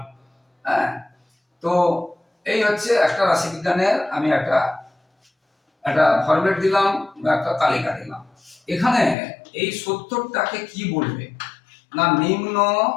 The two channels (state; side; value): drops out; right; at 9.2 s